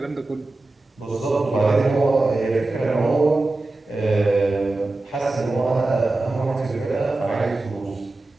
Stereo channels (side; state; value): left; quieter; 3.1 dB